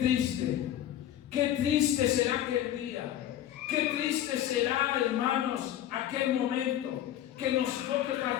será aquel día. Qué triste será, hermanos, aquel momento que nos toque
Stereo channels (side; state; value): right; quieter; 11.8 dB